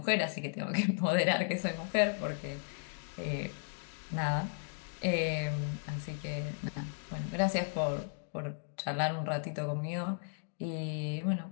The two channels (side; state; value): right; silent; digital silence